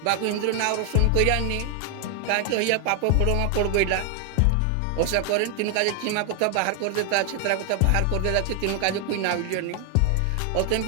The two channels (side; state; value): both; different; correlation 0.00